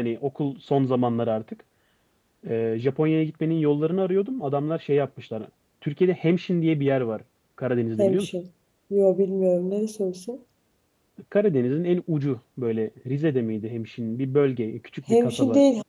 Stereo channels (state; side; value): identical; both; correlation 1.00